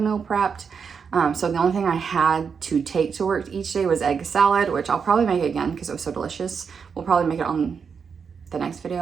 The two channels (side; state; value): left; quieter; 6.2 dB